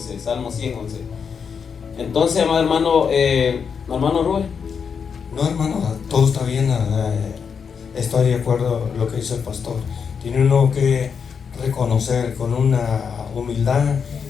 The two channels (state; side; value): quieter; right; 6.4 dB